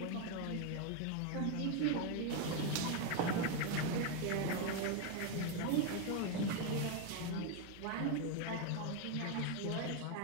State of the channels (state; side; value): different; both; correlation 0.01